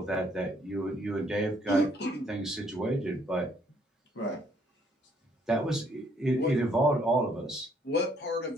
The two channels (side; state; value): both; normal; correlation 0.66